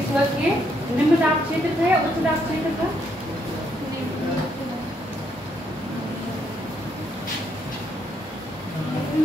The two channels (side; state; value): both; normal; correlation 0.74